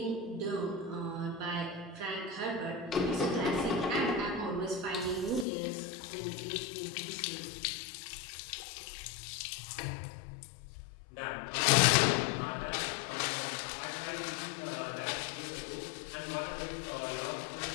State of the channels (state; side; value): drops out; right; at 5.5 s